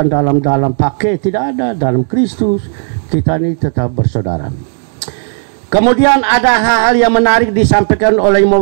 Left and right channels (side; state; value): left; silent; digital silence